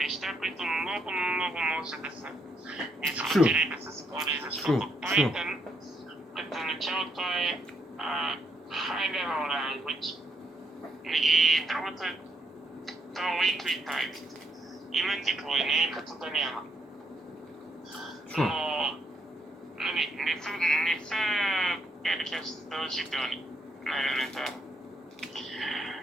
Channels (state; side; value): normal; both; correlation 0.75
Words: които много може да се дискутира и да се спори, защото Python като начало това е high level language и другото е то weakly typed. Има типове, не е като да няма. Но не са задължителни на елементарно.